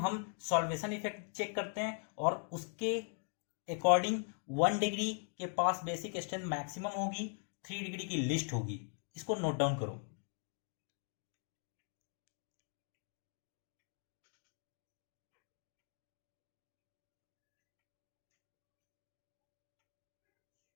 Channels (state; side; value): silent; right; 50 dB below the other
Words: सॉल्वेशन इफेक्ट चेक करते हैं और उसके अकॉर्डिंग 1 डिग्री के पास बेसिक स्ट्रेंथ मैक्सिमम होगी, 3 डिग्री की लिस्ट होगी। इसको नोट डाउन करो।